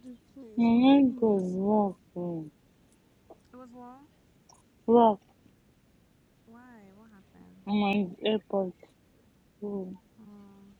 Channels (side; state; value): both; identical; correlation 1.00